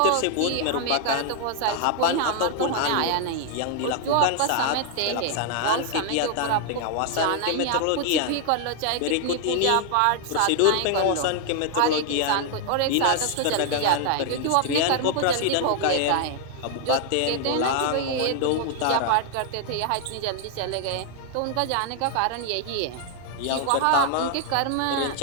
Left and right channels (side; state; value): both; different; correlation 0.00